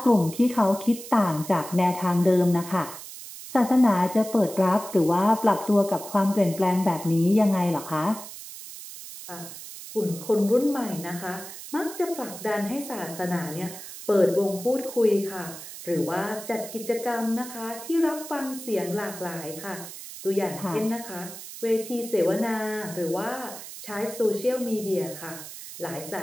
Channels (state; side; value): noise; right; hiss, 13 dB below the sound